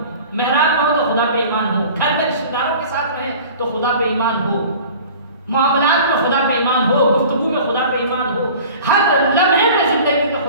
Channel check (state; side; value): inverted; both; correlation -0.43